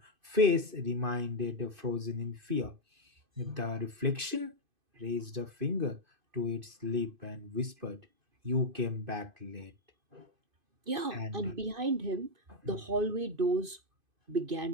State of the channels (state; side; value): late; left; 2.5 ms